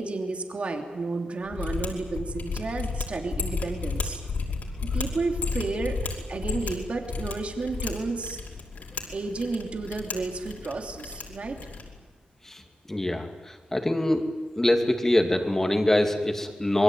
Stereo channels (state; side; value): normal; both; correlation 0.89